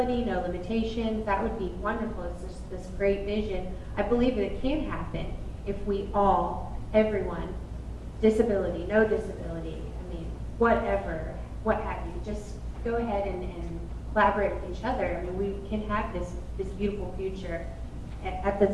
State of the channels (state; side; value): identical; both; correlation 1.00